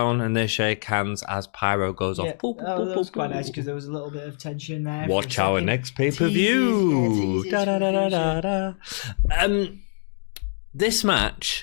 and they shake hands as Pyro goes off. Boop, that was quite nice because there was a little bit of tension there. Watch for a our second. next pay-per-view. Teasers for the future. This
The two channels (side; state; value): right; silent; digital silence